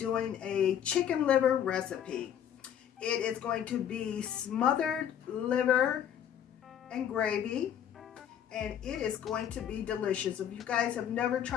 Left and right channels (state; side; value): quieter; right; 9.5 dB